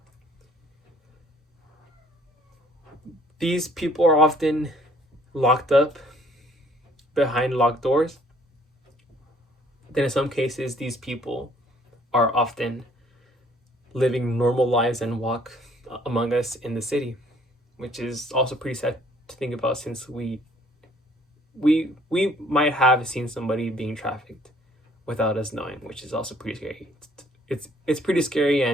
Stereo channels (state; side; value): normal; both; correlation 0.60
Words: These people are often locked up behind locked doors. Then in some cases, these people are often living normal lives and walk among us in the city, which is also pretty sad to think about, since we might have seen somebody being trafficked without us knowing, which is also pretty scary. It's pretty scary